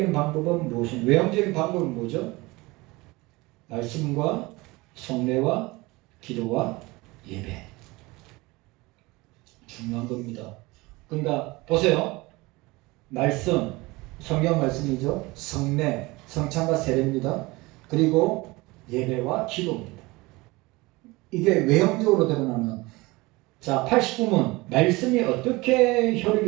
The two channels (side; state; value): left; quieter; 22.5 dB